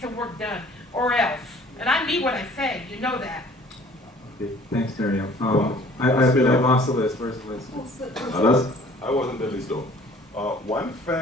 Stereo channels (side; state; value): both; normal; correlation 0.53